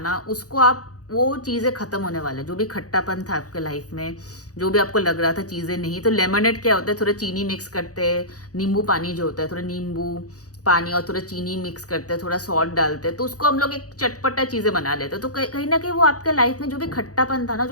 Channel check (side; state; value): right; late; 0.67 ms